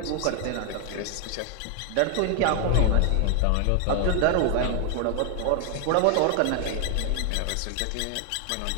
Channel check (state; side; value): different; both; correlation 0.00